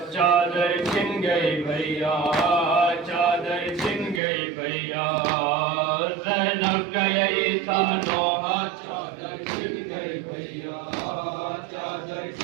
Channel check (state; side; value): drops out; left; at 4.2 s